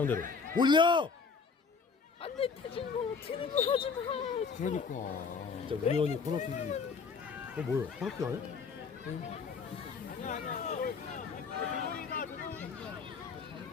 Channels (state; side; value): quieter; right; 5.3 dB